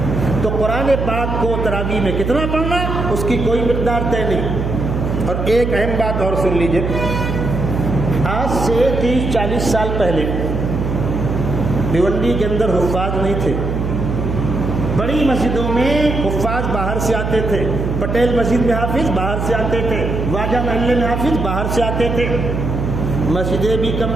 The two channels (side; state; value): right; noise; hum, 2 dB below the sound